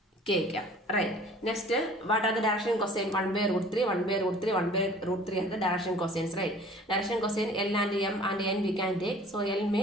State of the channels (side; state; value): both; normal; correlation 0.49